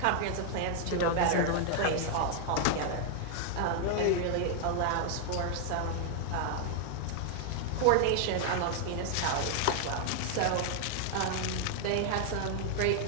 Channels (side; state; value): both; different; correlation 0.00